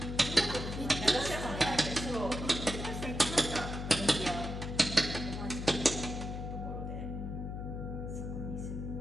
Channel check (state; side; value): noise; left; hum, 5 dB below the sound